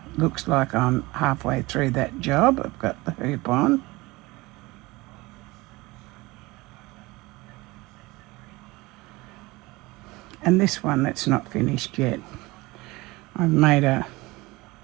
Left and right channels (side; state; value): left; quieter; 21.8 dB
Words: Looks like I'm halfway through that job. I've got the hoop on. And this one that's not finished yet. I've made a